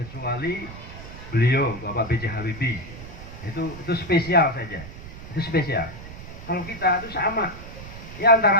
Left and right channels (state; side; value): noise; right; rumble, 13 dB below the sound